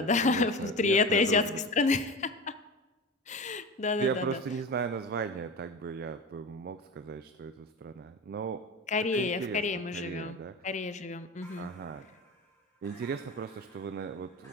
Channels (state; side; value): normal; both; correlation 0.29